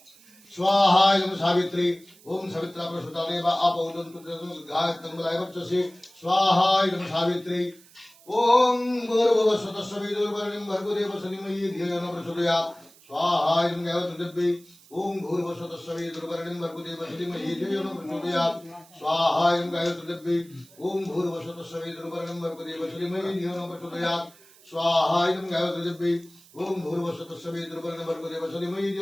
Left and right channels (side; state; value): right; noise; hiss, 25 dB below the sound